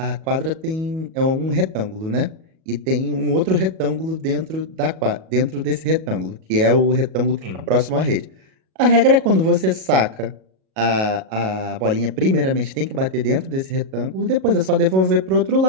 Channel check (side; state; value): left; late; 37 ms